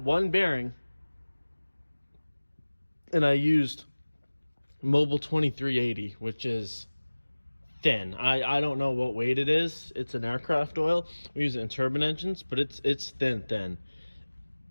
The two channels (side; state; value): both; inverted; correlation -1.00